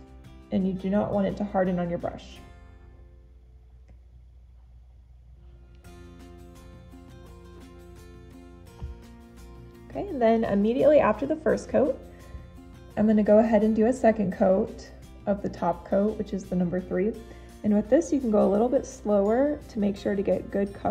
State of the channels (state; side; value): identical; both; correlation 1.00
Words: and you do not want it to harden on your brush. Okay, and then immediately after the first coat, I'm going to go ahead and do a second coat of the top coat, which is the number 3. And with this, you can go a little bit slower to make sure to get good